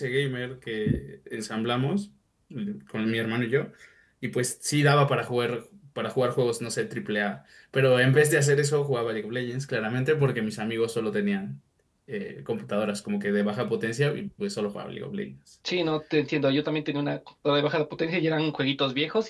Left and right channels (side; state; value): both; identical; correlation 1.00